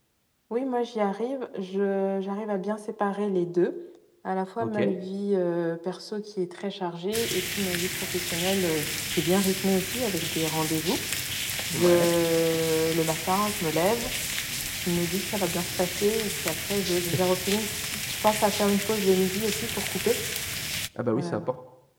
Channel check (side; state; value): both; identical; correlation 1.00